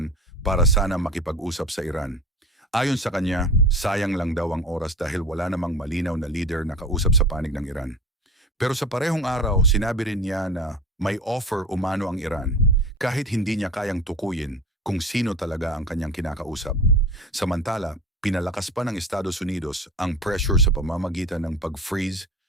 para sana makipag-usap sa Iran. Ayon sa kanya, sayang lang daw ang oras dahil wala namang malinaw na leader na kausap sa panig ng Iran. Pero sa parehong araw, sinabi rin niya na may offer umano ang Iran kahit hindi niya kayang tukuyin kung sino talaga ang kanyang kinakausap. Samantala, pinalakas pa ng Estados Unidos ang pressure sa pamamagitan ng pag-freeze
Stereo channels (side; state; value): both; normal; correlation 0.34